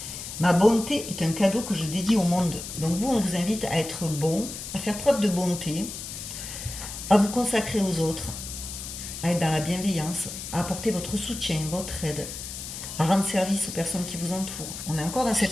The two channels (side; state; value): left; noise; hiss, 9 dB below the sound